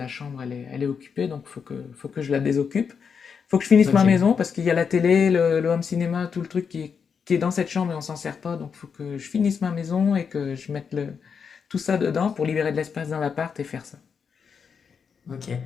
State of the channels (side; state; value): right; quieter; 6.3 dB